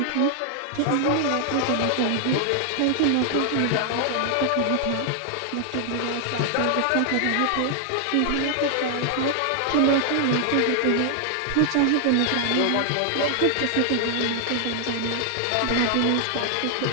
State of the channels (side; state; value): both; different; correlation 0.00